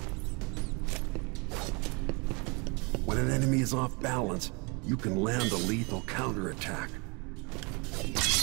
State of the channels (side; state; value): left; quieter; 30.5 dB